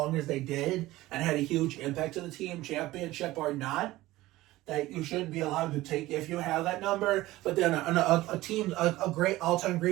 as they did, and had a huge impact to the team, championship or not, that you shouldn't be allowed to take if you have that number. But then a great all-time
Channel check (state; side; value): quieter; left; 17.4 dB